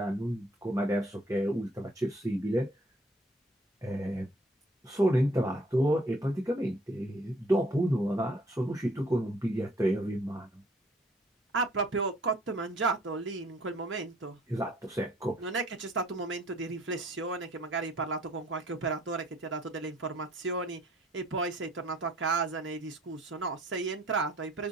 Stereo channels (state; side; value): normal; both; correlation 0.59